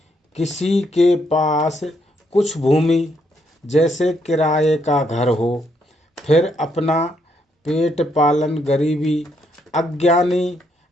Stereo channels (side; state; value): both; normal; correlation 0.75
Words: किसी के पास कुछ भूमि। जैसे किराए का घर हो, फिर अपना पेट पालन गरीबी। अज्ञानी